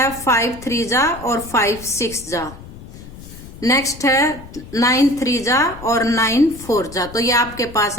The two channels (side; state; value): left; noise; rumble, 16 dB below the sound